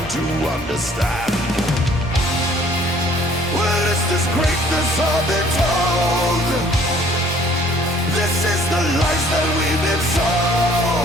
to understand. Where is this greatness all been told? This is the lies that we've been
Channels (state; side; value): normal; both; correlation 0.57